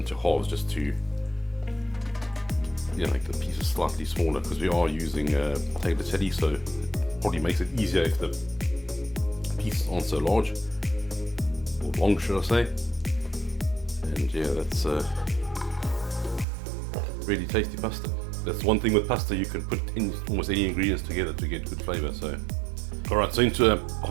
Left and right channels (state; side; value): drops out; left; at 16.4 s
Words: halves just to make the pieces slightly smaller, because we are using tagliatelle, so it probably makes it easier if the pieces aren't so large, or long should I say. And yeah, that's really tasty pasta. That's one thing with pasta, you can put in almost any ingredients together to get good flavor. So alright, so into a